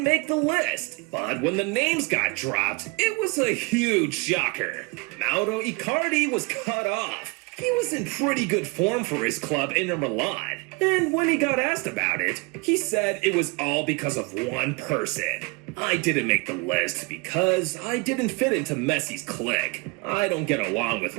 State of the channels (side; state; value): left; quieter; 27.9 dB